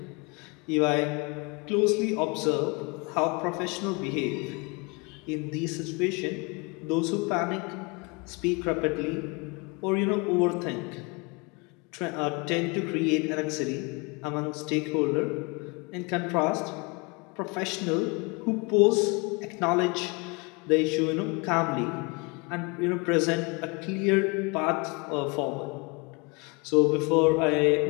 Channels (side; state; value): right; quieter; 29.4 dB